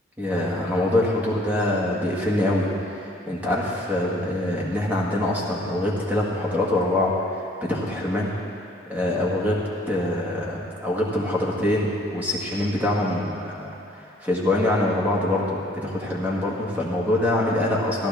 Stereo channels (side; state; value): both; normal; correlation 0.58